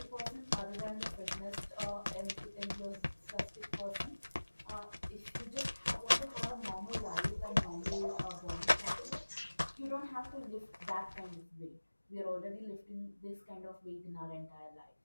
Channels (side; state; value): both; inverted; correlation -1.00